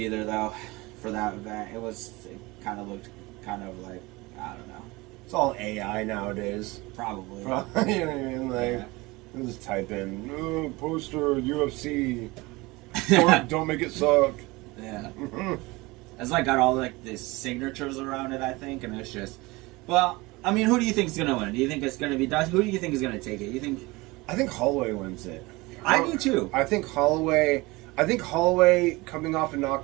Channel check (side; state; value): left; quieter; 22.6 dB